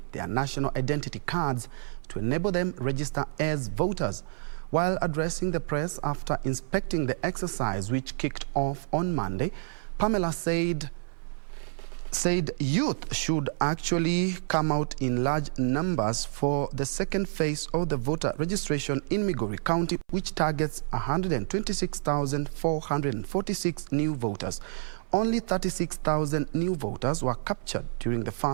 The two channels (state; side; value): silent; left; 59 dB below the other